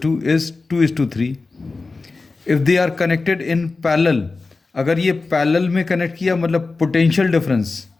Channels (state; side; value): quieter; right; 3.8 dB